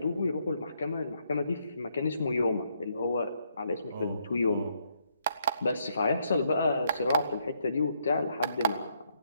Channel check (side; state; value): both; inverted; correlation -0.74